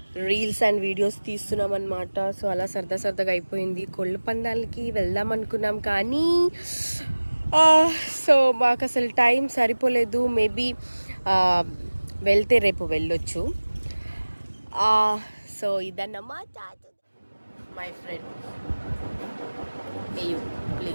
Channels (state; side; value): inverted; both; correlation -1.00